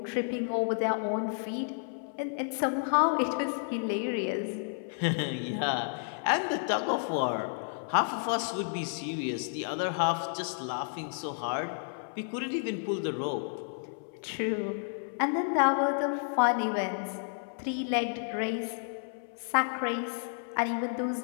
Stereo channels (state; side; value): silent; right; 57 dB below the other